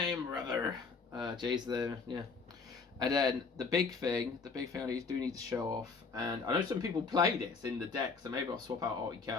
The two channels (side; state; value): right; quieter; 4.7 dB